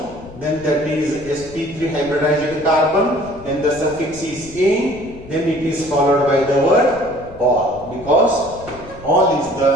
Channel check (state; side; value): noise; left; rumble, 18 dB below the sound